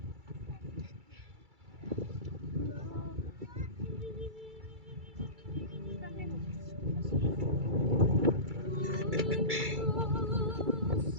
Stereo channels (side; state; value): left; late; 2.3 ms